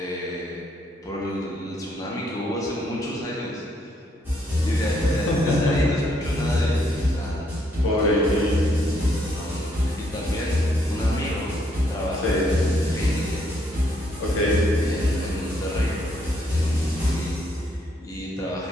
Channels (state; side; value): normal; both; correlation 0.72